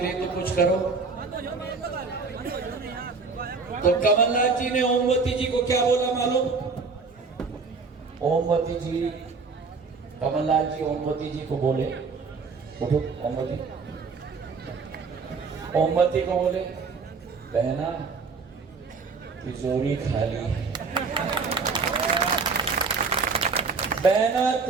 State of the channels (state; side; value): quieter; left; 4.6 dB